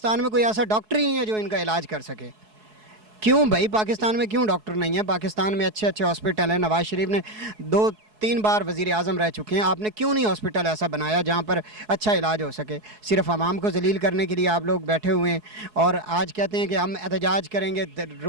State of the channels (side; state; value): left; late; 4.7 ms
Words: में कोई ऐसा डॉक्टर ही नहीं है जो इनका इलाज कर सके। क्यों भाई, पाकिस्तान में क्यों डॉक्टर नहीं है? पाकिस्तान में अच्छे अच्छे हॉस्पिटल हैं। नवाज़ शरीफ ने 2-3 बार वज़ीर आज़म रह चुके हैं, आपने क्यों नहीं हॉस्पिटल ऐसा बनाया जहाँ पर अच्छा इलाज हो सके? सिर्फ आवाम को जलील करने के लिए आप लोग बैठे हुए हैं और आज कहते हैं कि हम एहतजाज करेंगे,